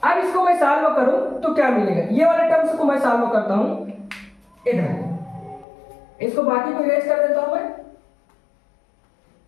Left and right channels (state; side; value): drops out; right; at 5.7 s